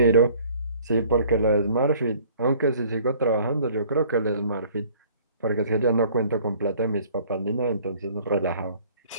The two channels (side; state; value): both; inverted; correlation -0.55